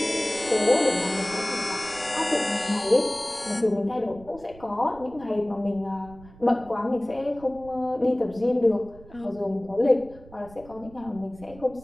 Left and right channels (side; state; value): right; noise; rumble, 21 dB below the sound